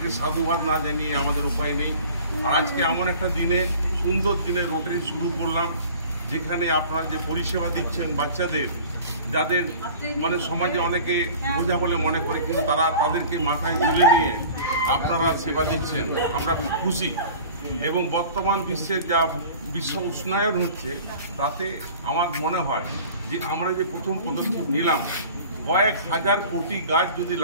সাধুবাদ না জানিয়ে আমাদের উপায় নেই। আর আজকে এমন একটা দিনে, সুন্দর দিনে রোটারি শুরু করলাম, যেখানে আপনারা যে পরিষেবা দিচ্ছেন বাচ্চাদের, যাদের মানে সমাজে অনেকে বোঝা বলে মনে করে, কিন্তু তাদেরকে মাথায় তুলে নিয়ে আপনারা সেবা দিচ্ছেন, আমরা খুশি। এবং বর্তমান বিশ্বের যা বিশ্ব উষ্ণায়ন হচ্ছে, তাতে আমার মনে হয় যে আমরা যে প্রথম পদক্ষেপ নিলাম, কয়েক হাজার কোটি গাছ যদি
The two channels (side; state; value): both; inverted; correlation -0.43